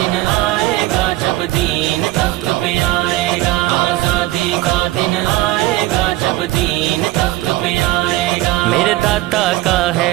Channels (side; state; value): left; quieter; 17.2 dB